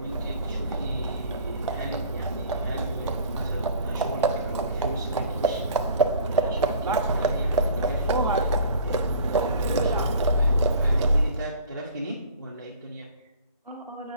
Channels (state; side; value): inverted; both; correlation -0.48